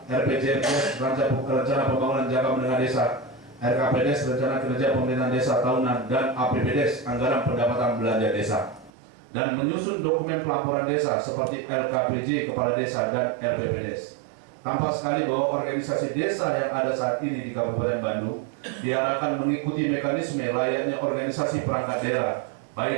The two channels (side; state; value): left; drops out; at 8.9 s